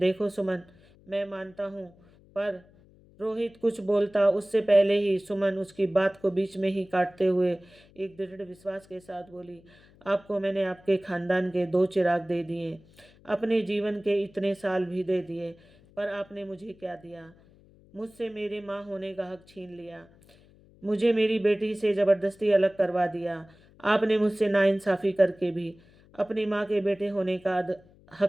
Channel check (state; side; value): noise; left; hum, 27 dB below the sound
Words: सुमन, मैं मानता हूँ, पर रोहित कुछ बोलता उससे पहले ही सुमन उसकी बात को बीच में ही काटते हुए एक दृढ़ विश्वास के साथ बोली, आपको मैंने आपके खानदान के 2 चिराग दे दिए, अपने जीवन के इतने साल भी दे दिए, पर आपने मुझे क्या दिया? मुझसे मेरे माँ होने का हक छीन लिया। मुझे मेरी बेटी से ज़बरदस्ती अलग करवा दिया। आपने मुझसे नाइंसाफ़ी करके भी अपनी माँ के बेटे होने का